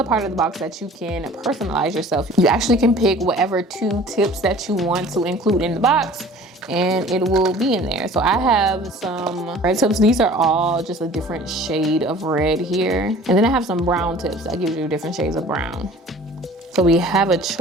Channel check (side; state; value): both; normal; correlation 0.47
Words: part of the box that you can personalize yourself. You actually can pick whatever 2 tips that you want to include in the box, and it will be in there. So I have some red tips. These are all just a different shade of red here. And then I have some brown tips that gives you different shades of brown. So we have a